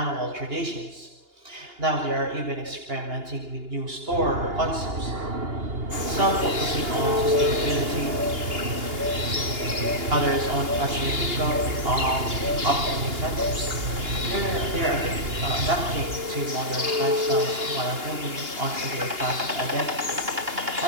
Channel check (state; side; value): late; left; 2.8 ms